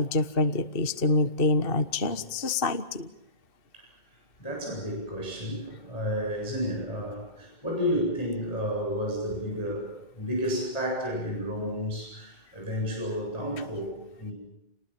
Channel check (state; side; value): late; right; 2.6 ms